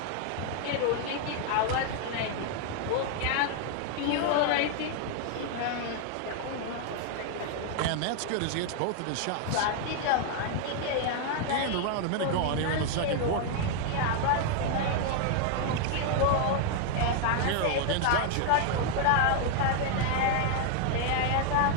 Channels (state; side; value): different; both; correlation 0.00